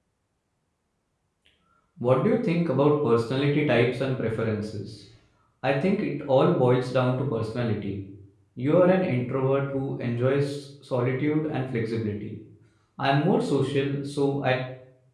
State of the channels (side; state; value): both; identical; correlation 1.00